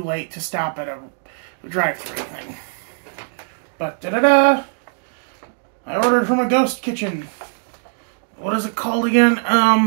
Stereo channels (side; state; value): left; silent; digital silence